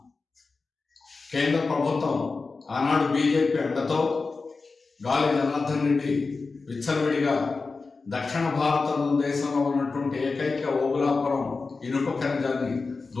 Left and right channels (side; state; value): right; quieter; 4.2 dB